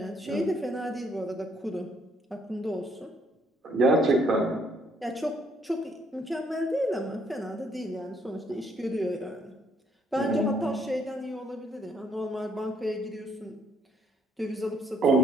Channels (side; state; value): both; normal; correlation 0.68